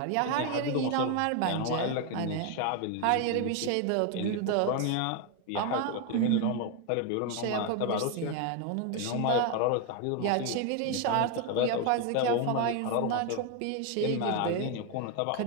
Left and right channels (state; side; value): different; both; correlation 0.01